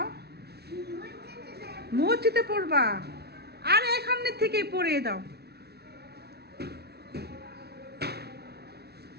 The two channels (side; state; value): left; late; 0.47 ms